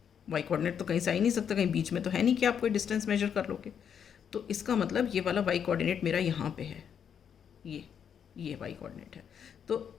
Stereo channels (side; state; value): right; quieter; 8.0 dB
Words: वाई कोऑर्डिनेट तो कहीं से आ ही नहीं सकता, कहीं बीच में तो है नहीं कि आप कोई डिस्टेंस मेजर कर लोगे। तो इसका मतलब ये वाला वाई कोऑर्डिनेट मेरा यहाँ पे है, ये ये वाई कोऑर्डिनेट है।